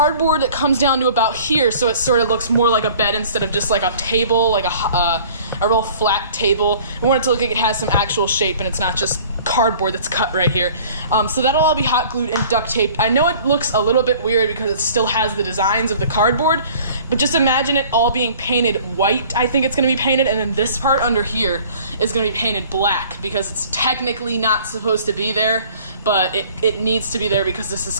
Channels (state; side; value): inverted; both; correlation -0.50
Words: that comes down to about here, so it sort of looks more like a bed instead of just like a table, like a real flat table. We want it to look like it has some actual shape and it's not just cardboard that's cut right here. So that'll all be hot glued and duct taped. I know it looks a little bit weird because it still has the designs of the cardboard, but just imagine it all being painted white. I think it's going to be painted, and then this part under here is going to be painted black because it's technically not supposed to be there, but it needs to be there because this is